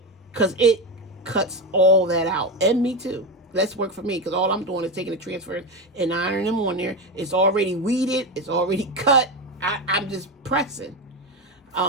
Because it cuts all that out. And me too. That's work for me, because all I'm doing is taking the transfers and ironing them on there. It's already weeded. It's already cut. I'm just pressing.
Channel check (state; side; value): normal; both; correlation 0.16